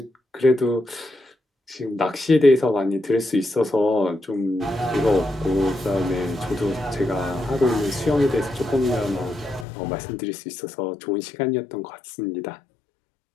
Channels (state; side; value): drops out; right; at 9.7 s